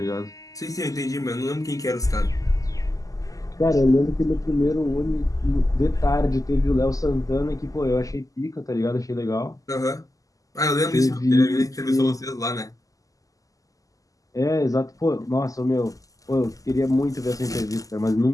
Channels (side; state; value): right; late; 0.17 ms